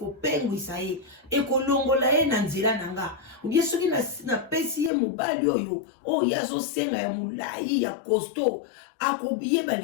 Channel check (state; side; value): drops out; right; at 4.9 s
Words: ye ekolongola ye na nzela nanga ubie soki na pesi ye mobali oyo ya zo senga ya mulai ya costaud akobiye